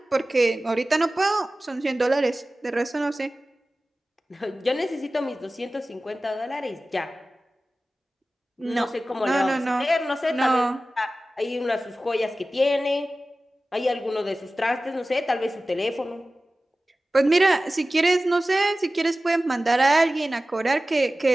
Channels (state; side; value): normal; both; correlation 0.96